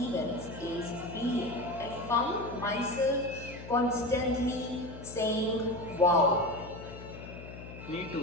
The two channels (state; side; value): noise; left; hum, 13 dB below the sound